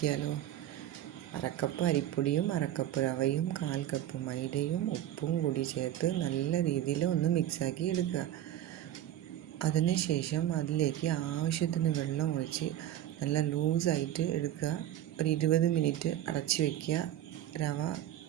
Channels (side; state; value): left; quieter; 12.3 dB